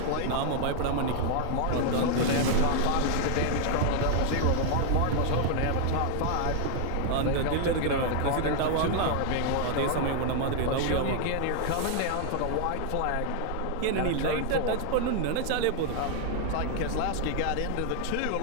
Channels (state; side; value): different; both; correlation 0.00